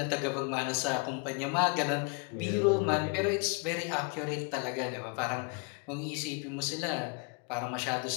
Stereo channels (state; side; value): quieter; right; 32.8 dB